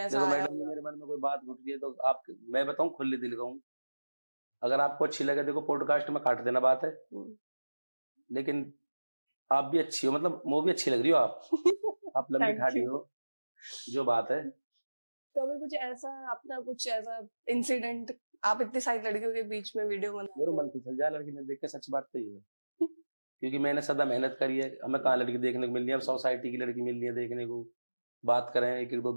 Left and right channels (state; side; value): inverted; both; correlation -1.00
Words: आया? मैडम जी, मेरे मन में कोई बात घुट गई तो आप, मैं बताऊं खुले दिल का हूँ, अगर आपको अच्छी लगे, देखो पॉडकास्ट में काट देना बात है, लेकिन आप भी अच्छी हो, मतलब वो भी अच्छी लग रही हो आप लंबी ठाडी हो, जो बात है। कभी कुछ ऐसा अपना कुछ ऐसा इंसिडेंट, आप इतनी सारी लड़कियों के बीच में वीडियो बना, मेरे मन फिसल जाए लड़की ने देख के, सच बात तो ये है क्योंकि मैंने सदा मेहनत करी है, हमें कहाँ लड़की देखने को मिल रही है, सोसाइटी की लड़की मिल रही है देखने को, बात करें